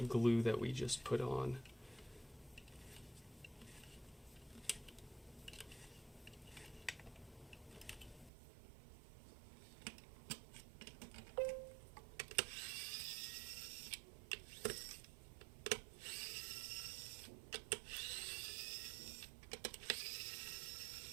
glue that we just put on.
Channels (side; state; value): left; drops out; at 8.3 s